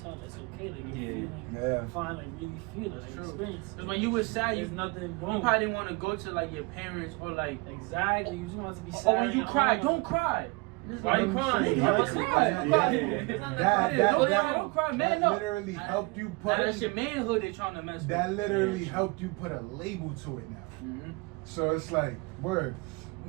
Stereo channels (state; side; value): quieter; left; 26.9 dB